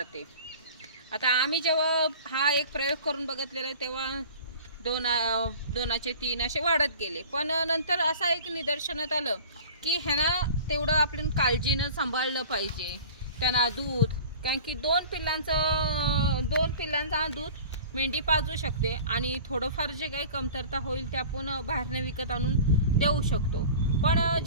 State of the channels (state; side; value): inverted; both; correlation -0.41